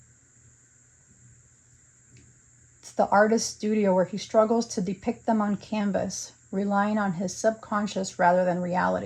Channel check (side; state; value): both; identical; correlation 1.00